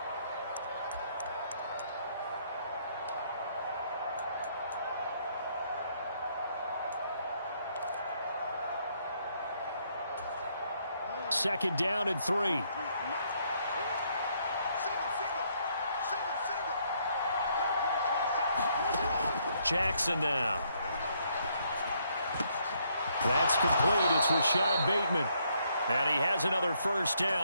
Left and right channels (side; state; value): both; inverted; correlation -0.71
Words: Second down and 3. Jackson now. That's complete. It's Rashad Bateman. And he has another first